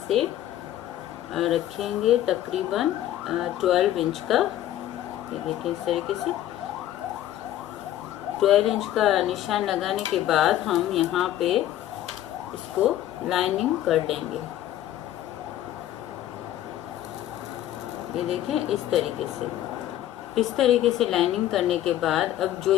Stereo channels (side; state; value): right; quieter; 12.9 dB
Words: से रखेंगे तकरीबन 12 इंच का। ये देखिए, इस तरीके से 12 इंच का निशान लगाने के बाद हम यहाँ पे इसको लाइनिंग कर देंगे। ये देखें, इस तरीके से। इस तरीके से लाइनिंग करने के बाद अब जो